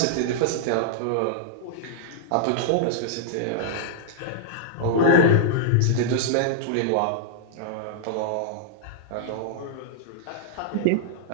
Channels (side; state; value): both; different; correlation -0.02